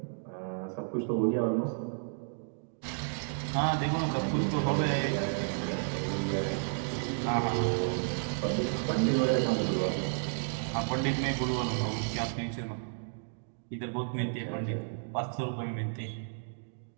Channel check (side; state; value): left; silent; digital silence